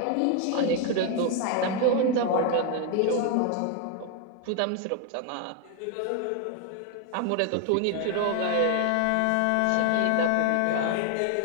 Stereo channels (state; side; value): different; both; correlation 0.00